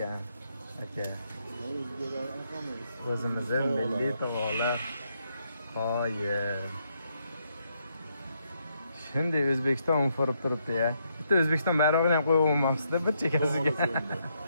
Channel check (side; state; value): both; inverted; correlation -0.77